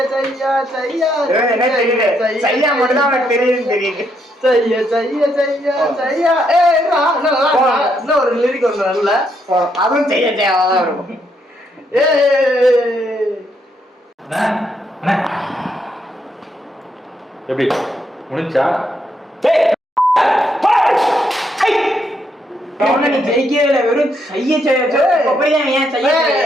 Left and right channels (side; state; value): both; normal; correlation 0.76